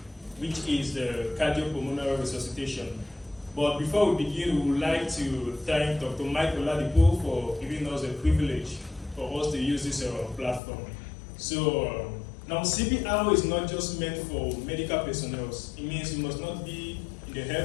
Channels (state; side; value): drops out; right; at 10.6 s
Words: which is cardiopulmonary resuscitation. But before we begin, we would like to thank Dr. Mike Oladipo for giving us the privilege for us to use this platform. So now CPR is not just meant for medical personnel. It means you must not be in the